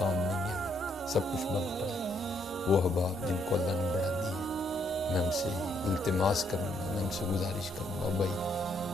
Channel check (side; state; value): both; normal; correlation 0.72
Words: نہیں ہے، سب کچھ بند پڑا ہے۔ وہ احباب جن کو اللہ نے بڑا دی ہے، میں ہم سے التماس کروں گا، میں ہم سے گزارش کروں گا، بھائی